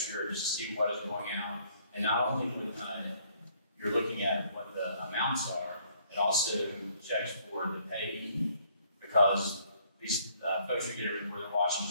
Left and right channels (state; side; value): inverted; both; correlation -0.64